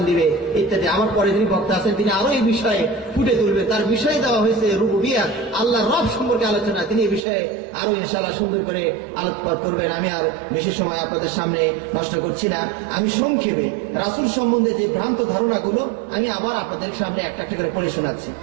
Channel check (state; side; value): drops out; left; at 7.2 s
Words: দিবে ইত্যাদি। আমার পরে যিনি বক্তা আছেন তিনি আরো এই বিষয়ে ফুটে তুলবে। তার বিষয়ে দেওয়া হয়েছে রুবুবিয়্যাহ, আল্লাহ রব সম্পর্কে আলোচনা। তিনি এই বিষয়ে আরো ইনশাআল্লাহ সুন্দর করে আলোকপাত করবেন। আমি আর বেশি সময় আপনাদের সামনে নষ্ট করছি না। আমি সংক্ষেপে রাসূল সম্বন্ধে যে ভ্রান্ত ধারণাগুলো আমি আবার আপনাদের সামনে একটা একটা করে পড়ে শোনাচ্ছি।